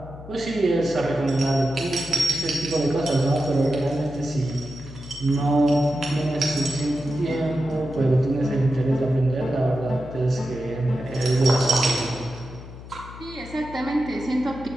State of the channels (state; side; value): noise; left; hum, 15 dB below the sound